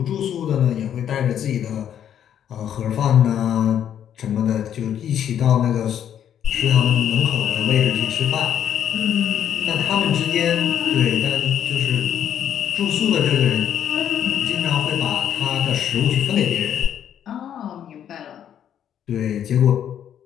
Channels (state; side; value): quieter; right; 9.7 dB